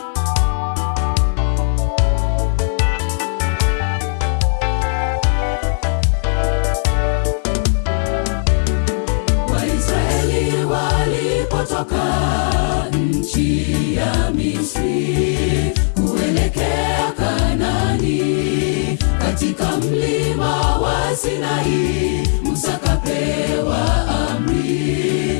Waisraeli walipotoka nchi ya Misri kuelekea Kanaani, katika mlima wa Sinai Musa kapewa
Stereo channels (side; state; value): right; silent; 68 dB below the other